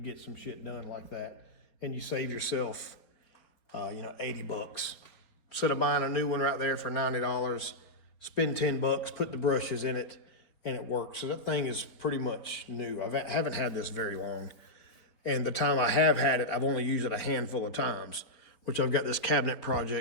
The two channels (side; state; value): right; late; 4.3 ms